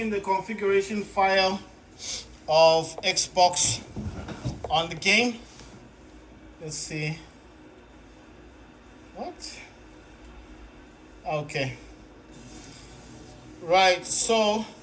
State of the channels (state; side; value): identical; both; correlation 1.00